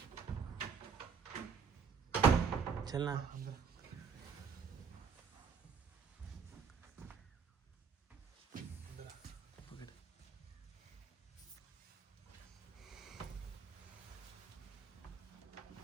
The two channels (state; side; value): quieter; left; 6.2 dB